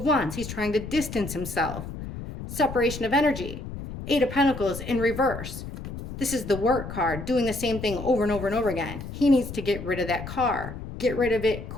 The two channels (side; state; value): left; noise; rumble, 9 dB below the sound